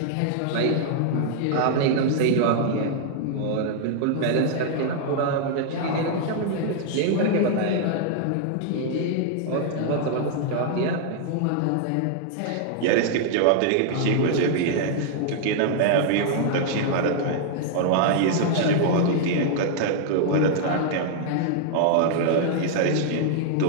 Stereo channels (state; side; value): different; both; correlation 0.00